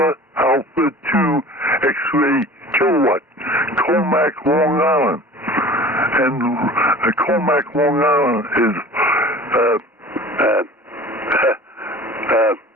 2 X-ray Kilowatt, Comac, Long Island. And Comac, Long Island is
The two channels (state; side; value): normal; both; correlation 0.41